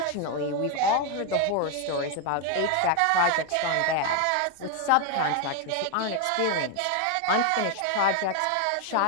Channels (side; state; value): both; different; correlation 0.01